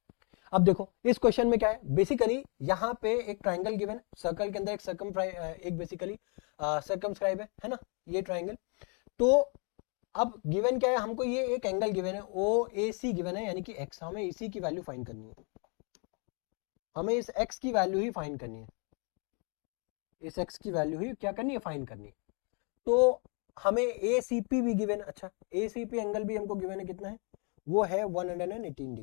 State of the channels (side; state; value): right; quieter; 37.0 dB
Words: अब देखो इस क्वेश्चन में क्या है, बेसिकली यहाँ पे एक ट्राइंगल गिवन, सर्कल के अंदर एक बेसिकली सर्कमस्क्राइब है ना, ये ट्राइंगल। तो अब गिवन क्या है, हमको ये एक एंगल गिवन है ओ ए सी गिवन है, यानी कि एक्स, हमें इसी की वैल्यू फाइंड करनी है, हमें इस एक्स की वैल्यू ही फाइंड करनी है, इस एक्स की वैल्यू ही क्या करनी है फाइंड करनी है। तो हमें ए सी पी भी गिवन है, अच्छा ए सी पी एंगल भी हमको गिवन है, कितना है वो है 118